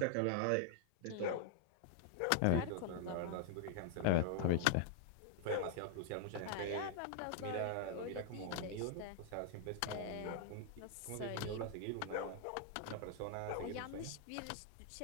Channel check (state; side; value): different; both; correlation -0.01